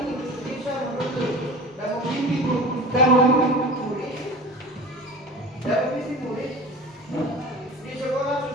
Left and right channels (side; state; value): both; normal; correlation 0.36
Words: mimpi utama murid dan mimpi murid di sekolah